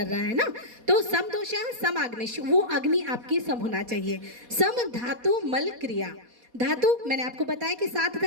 रहा है ना। तो समदोषः, समाग्निश्च, वो अग्नि आपकी सम होना चाहिए। सम धातु मल क्रिया, धातु मैंने आपको बताया कि 7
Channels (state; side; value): late; left; 4.2 ms